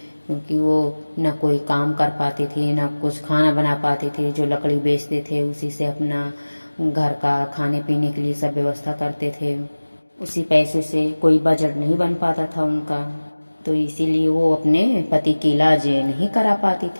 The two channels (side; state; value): both; inverted; correlation -1.00